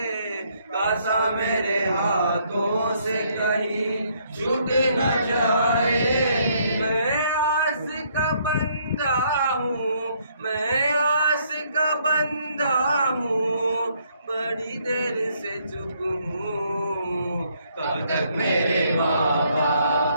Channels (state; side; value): inverted; both; correlation -0.69